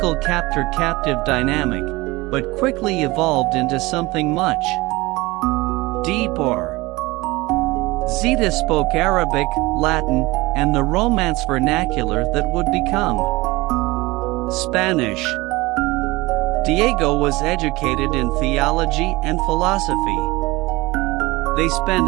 captor-captive dynamic, but quickly evolved into something much deeper. Zita spoke Arabic, Latin, and the Romance vernacular that would become Spanish. Diego was educated in theology and philosophy. They spent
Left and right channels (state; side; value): quieter; left; 21.5 dB